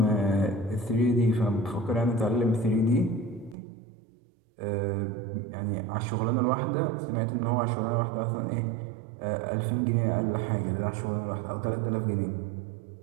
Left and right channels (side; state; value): left; drops out; at 3.6 s